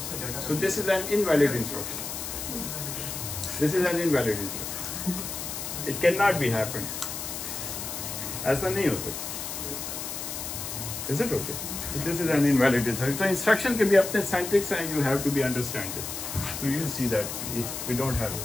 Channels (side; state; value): left; noise; hiss, 6 dB below the sound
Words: So this is an invalid instruction. This is an invalid instruction. It cannot be happened. ऐसा नहीं हो सकता. Is it okay? So this is an invalid instruction. So instruction can be अपने syntax and you have to be understand it. So you see that we don't have it.